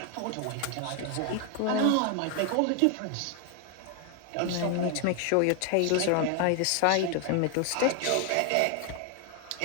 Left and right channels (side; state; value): both; different; correlation 0.01